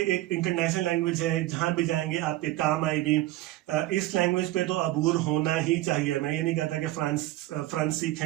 एक इंटरनेशनल लैंग्वेज है, जहां भी जाएंगे आपके काम आएगी। इस लैंग्वेज पे तो अबूर होना ही चाहिए। मैं ये नहीं कहता कि फ्रांस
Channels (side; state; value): left; quieter; 16.4 dB